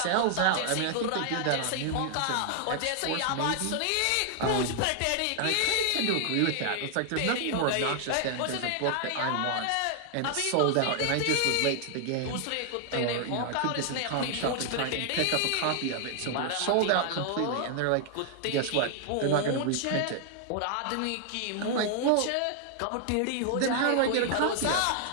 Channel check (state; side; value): different; both; correlation 0.00